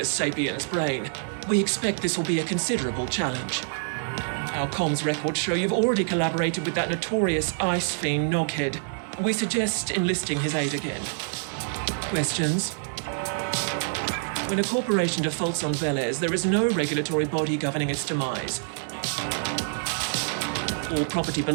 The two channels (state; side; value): silent; left; digital silence